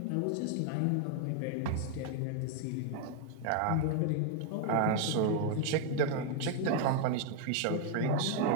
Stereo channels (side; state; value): both; different; correlation 0.01